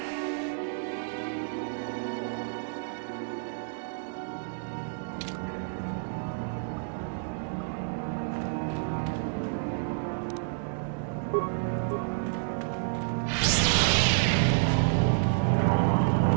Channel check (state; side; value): silent; left; 58 dB below the other